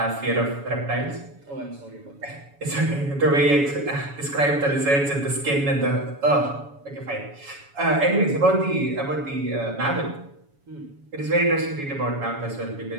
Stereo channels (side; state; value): left; late; 7.1 ms